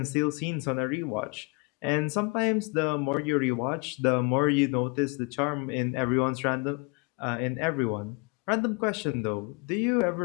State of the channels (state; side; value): quieter; right; 30.7 dB